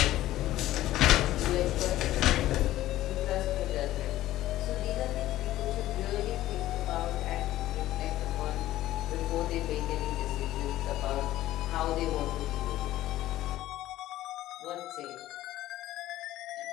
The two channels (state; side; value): quieter; right; 14.8 dB